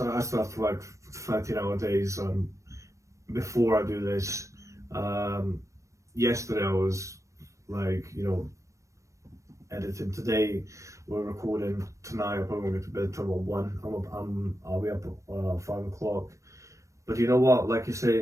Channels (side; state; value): left; late; 0.15 ms